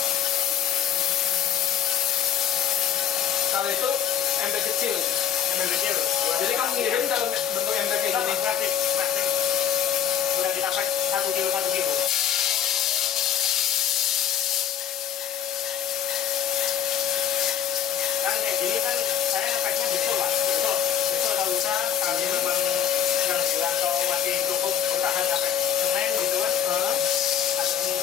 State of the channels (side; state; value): right; quieter; 9.2 dB